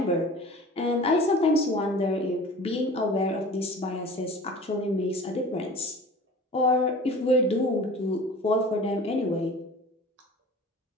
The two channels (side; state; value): both; normal; correlation 0.41